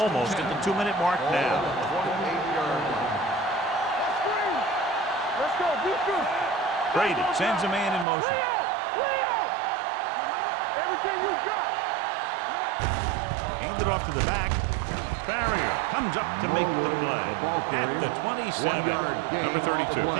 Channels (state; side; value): drops out; left; at 8.1 s